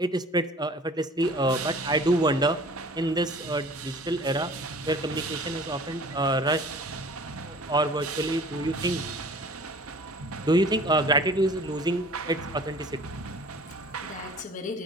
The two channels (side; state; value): both; normal; correlation 0.47